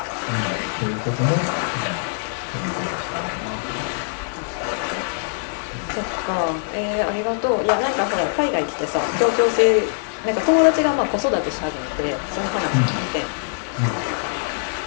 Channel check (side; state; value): right; silent; 62 dB below the other